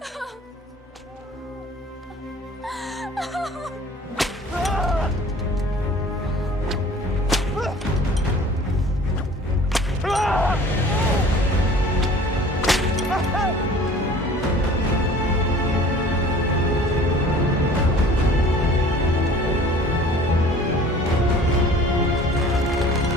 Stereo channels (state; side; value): normal; both; correlation 0.48